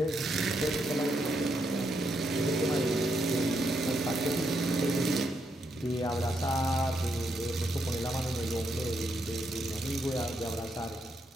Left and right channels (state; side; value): normal; both; correlation 0.79